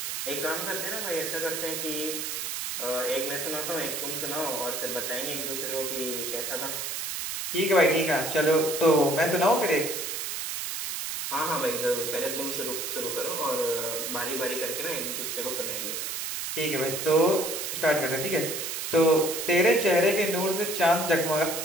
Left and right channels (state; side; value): noise; right; hiss, 4 dB below the sound